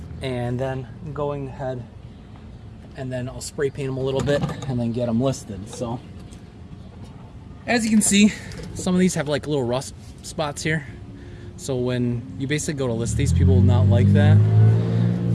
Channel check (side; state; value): both; identical; correlation 1.00